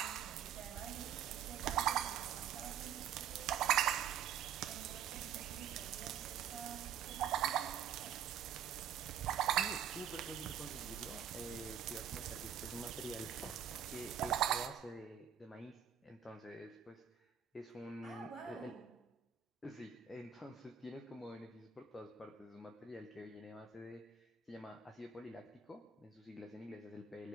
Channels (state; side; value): quieter; left; 8.5 dB